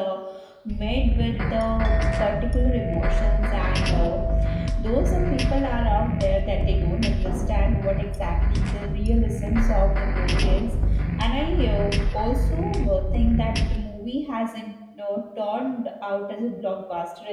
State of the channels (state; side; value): identical; both; correlation 1.00